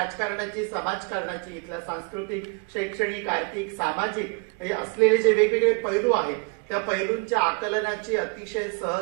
समाजकारणाची, इथल्या सांस्कृतिक, शैक्षणिक, आर्थिक, सामाजिक हे असलेले जे वेगवेगळे पैलू आहेत त्या पैलूंच्या आकलनाची अतिशय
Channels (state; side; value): quieter; left; 34.0 dB